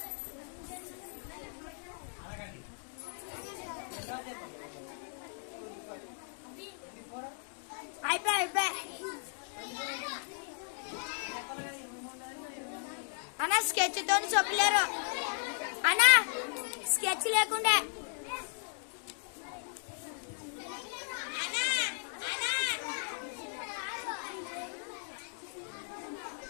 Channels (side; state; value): right; silent; 54 dB below the other